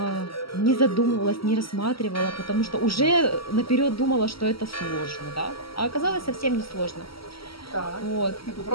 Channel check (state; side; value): late; right; 0.75 ms